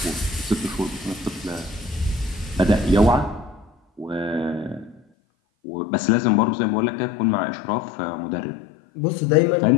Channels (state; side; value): drops out; right; at 5.0 s